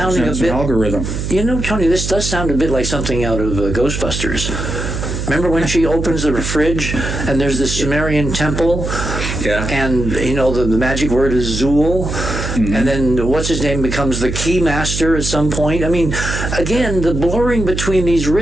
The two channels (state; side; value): noise; right; hum, 4 dB below the sound